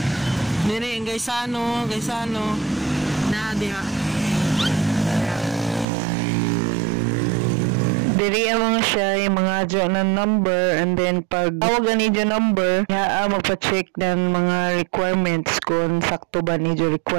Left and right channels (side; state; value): left; drops out; at 5.9 s